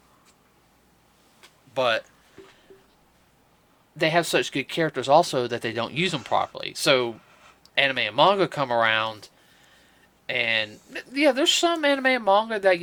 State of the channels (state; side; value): identical; both; correlation 1.00